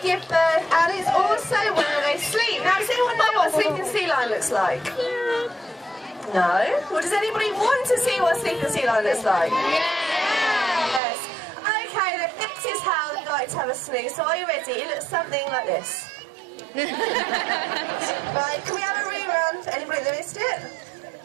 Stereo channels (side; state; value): left; drops out; at 11.0 s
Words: birth, and it's also where they sleep. Now, does anyone know what a sleeping sea lion looks like? No? Well, does anybody want to see what a sleeping sea lion looks like? Yes. Okay, then this is how they like to have a snooze. So are you ready? It looks something like this. Right, can we have a rerun for anybody that missed it?